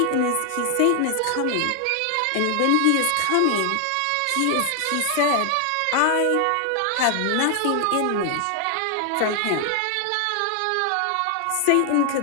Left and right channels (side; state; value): both; different; correlation 0.00